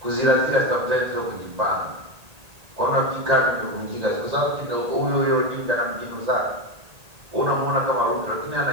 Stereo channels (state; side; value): late; left; 1.8 ms